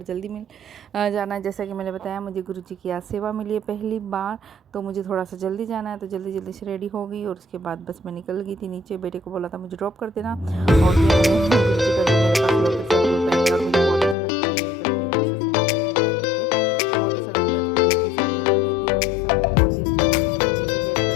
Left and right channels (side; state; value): right; drops out; at 14.2 s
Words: जल्दी मिल जाना है। जैसा कि मैंने बताया मुझे गुरु जी की आज सेवा मिली है पहली बार, तो मुझे थोड़ा सा जल्दी जाना है, तो जल्दी जल्दी से रेडी हो गई और उसके बाद बस मैं निकल गई थी नीचे। बेटे को बोला था मुझे ड्रॉप कर देना और